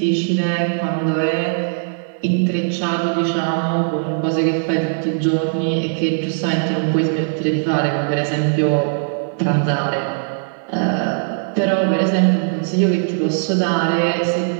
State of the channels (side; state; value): left; silent; digital silence